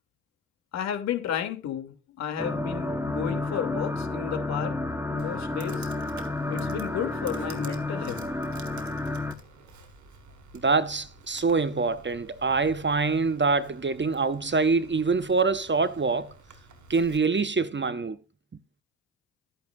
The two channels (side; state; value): both; normal; correlation 0.16